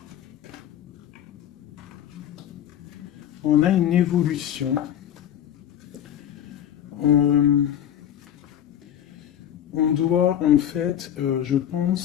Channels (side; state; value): right; quieter; 10.3 dB